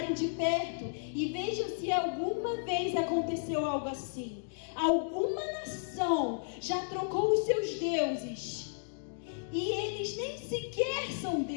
de perto e vejam se alguma vez aconteceu algo assim. Alguma nação já trocou os seus deuses e eles nem sequer são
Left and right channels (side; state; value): right; silent; digital silence